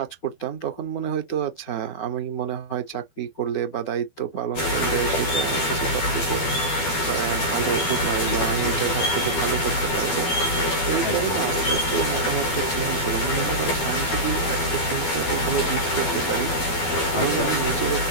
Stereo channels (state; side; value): late; right; 12 ms